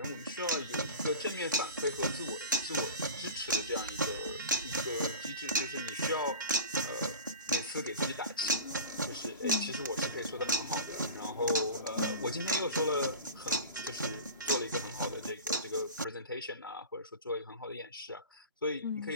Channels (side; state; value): both; inverted; correlation -0.33